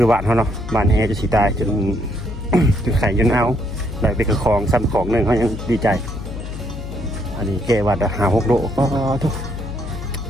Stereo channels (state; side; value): noise; left; hum, 9 dB below the sound